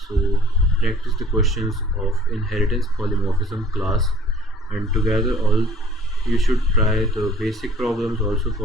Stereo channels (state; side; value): normal; both; correlation 0.53